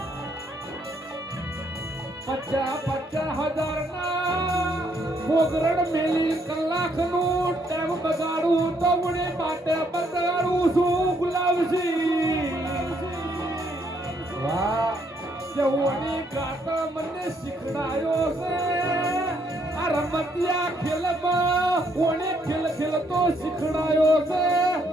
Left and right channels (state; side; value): normal; both; correlation 0.71